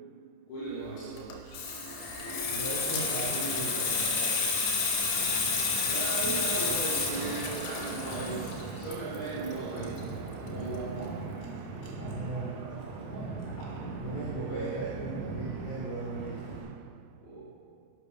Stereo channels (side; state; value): right; late; 30 ms